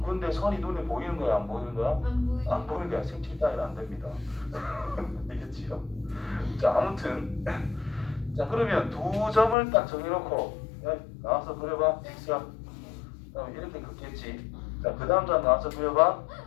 근데 선이 눈에 보이는 거야, 안 보이는 거야? 안 보이죠. 안 보이는 거야. 색칠 따위는 안 됩니다. 알겠지요? 자, 아무튼 자, 그러면 두 점을 딱 정해놓고 나와서 그려봐. 직선. 그럼 이렇게 긋겠지. 자, 그 다음 사람 나와서 그려봐.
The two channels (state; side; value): drops out; right; at 9.6 s